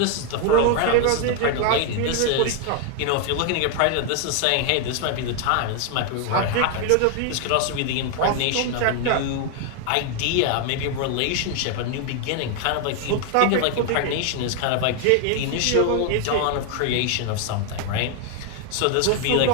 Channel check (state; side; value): different; both; correlation 0.00